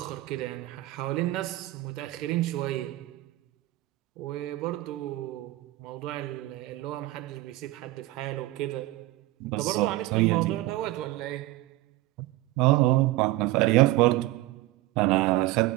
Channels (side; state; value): left; quieter; 17.6 dB